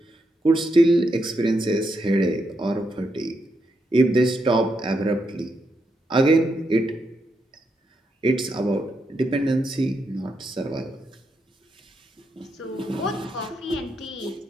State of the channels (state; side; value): normal; both; correlation 0.82